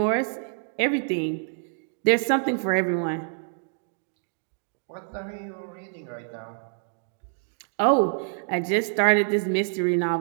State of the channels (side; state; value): left; silent; digital silence